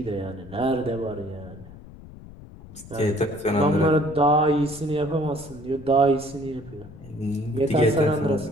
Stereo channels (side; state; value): left; noise; rumble, 17 dB below the sound